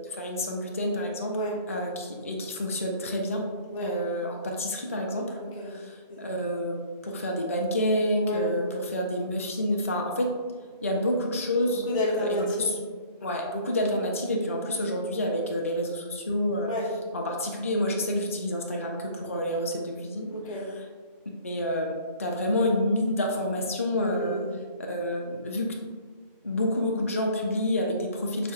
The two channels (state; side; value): inverted; both; correlation -0.51